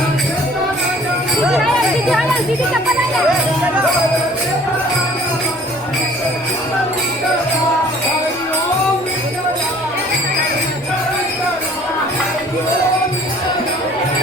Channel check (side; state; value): both; normal; correlation 0.53